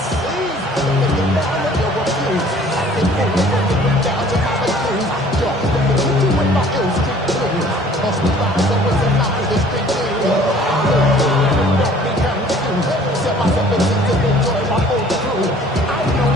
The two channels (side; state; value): both; normal; correlation 0.53